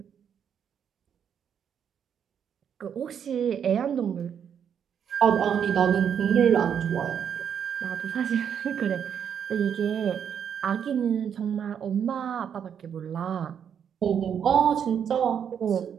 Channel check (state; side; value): quieter; left; 8.1 dB